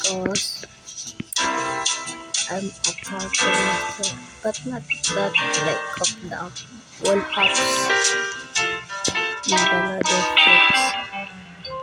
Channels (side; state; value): both; identical; correlation 1.00